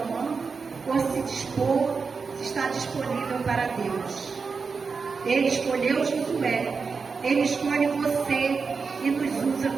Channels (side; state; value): left; quieter; 5.0 dB